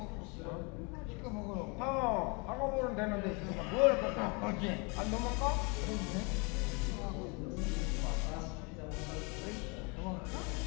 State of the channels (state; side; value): quieter; right; 31.2 dB